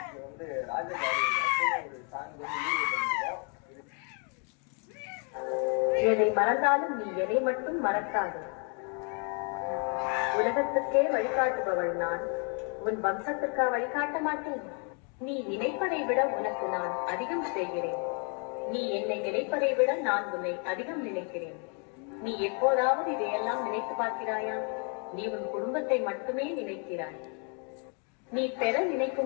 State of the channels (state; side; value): quieter; right; 38.8 dB